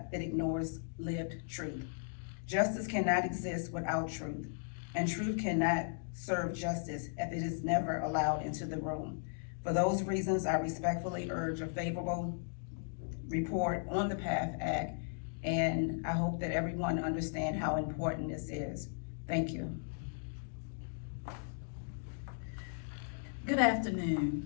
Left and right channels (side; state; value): right; silent; digital silence